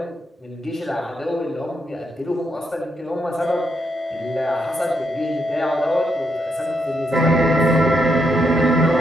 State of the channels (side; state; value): both; normal; correlation 0.79